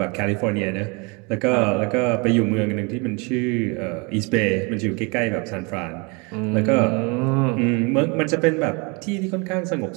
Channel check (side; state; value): left; quieter; 30.2 dB